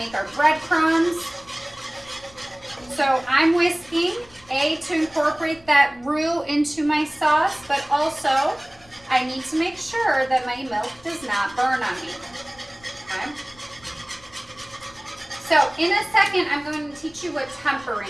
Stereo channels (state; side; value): noise; left; rumble, 26 dB below the sound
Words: our breadcrumbs. So I'm whisking, to incorporate that roux into my sauce, but also I need to make sure that my milk does not burn on me, okay? So in a second, I'm going to teach you what